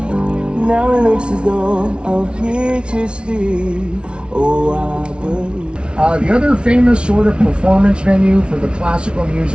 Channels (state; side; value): late; left; 0.057 ms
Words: Now it looks as though I'm here to stay. Oh, I believe. The other famous sort of performance venue for the classical